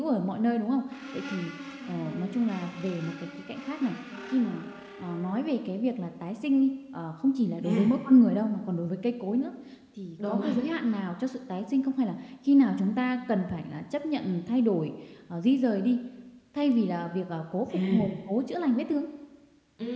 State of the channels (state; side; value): identical; both; correlation 1.00